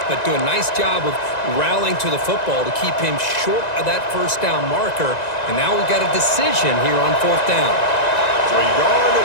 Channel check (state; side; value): late; right; 1.9 ms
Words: but do a nice job of rallying to the football to keep him short of that first down marker. And now we've got a decision here on fourth down. So a yard